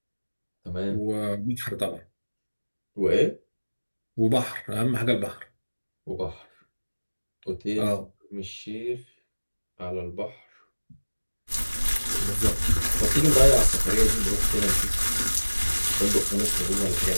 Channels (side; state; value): both; inverted; correlation -1.00